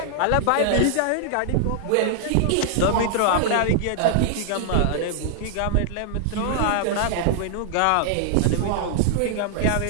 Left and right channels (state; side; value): different; both; correlation -0.01